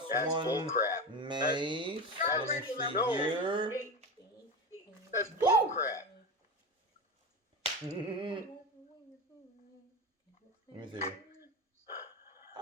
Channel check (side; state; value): both; normal; correlation 0.22